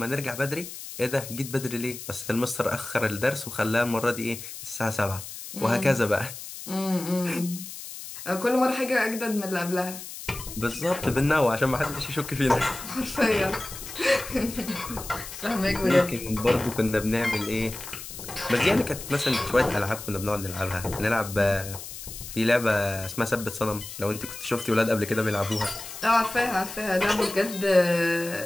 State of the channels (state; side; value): noise; left; hiss, 11 dB below the sound